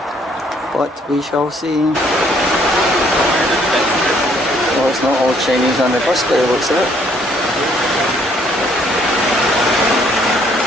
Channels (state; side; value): normal; both; correlation 0.65